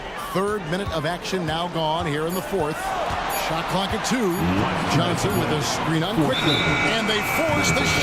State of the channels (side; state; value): both; identical; correlation 1.00